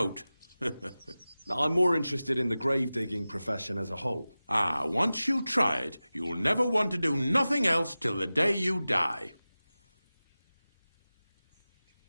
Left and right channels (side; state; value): both; inverted; correlation -0.96